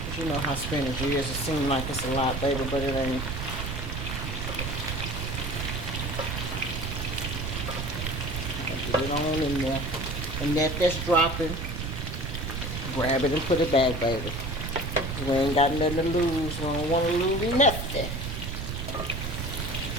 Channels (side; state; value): right; noise; rumble, 4 dB below the sound